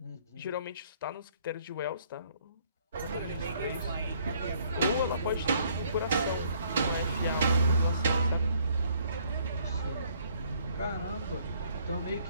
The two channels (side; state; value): both; inverted; correlation -0.63